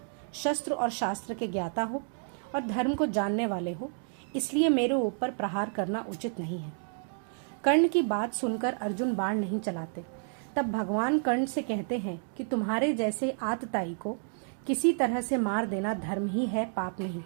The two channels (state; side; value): silent; left; 58 dB below the other